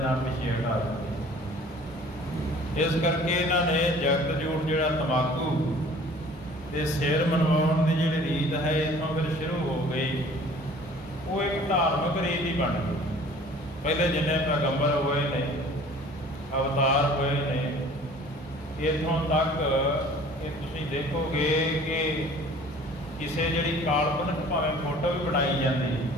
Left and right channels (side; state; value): both; normal; correlation 0.50